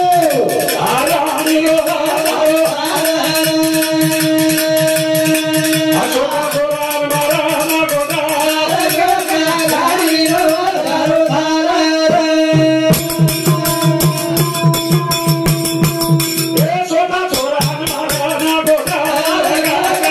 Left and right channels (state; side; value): identical; both; correlation 1.00